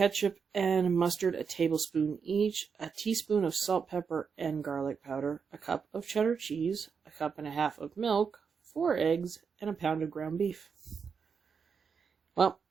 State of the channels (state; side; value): quieter; left; 6.1 dB